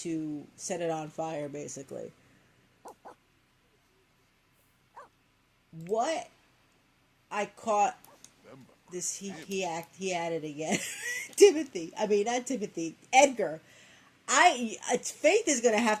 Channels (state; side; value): identical; both; correlation 1.00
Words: set it on fire, basically, what I caught this, he added again. Timothy, I mean, not Timothy, Edgar. Faith is going to have